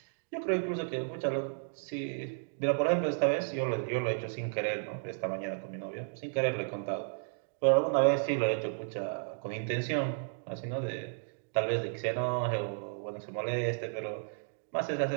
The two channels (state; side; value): silent; left; digital silence